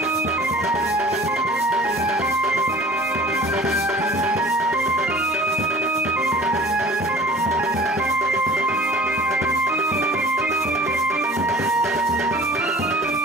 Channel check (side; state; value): both; normal; correlation 0.45